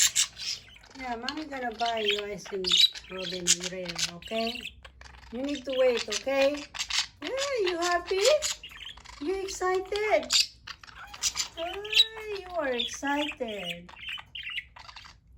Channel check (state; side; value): identical; both; correlation 1.00